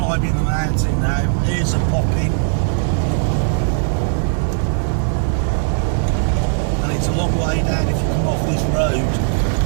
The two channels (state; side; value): silent; left; digital silence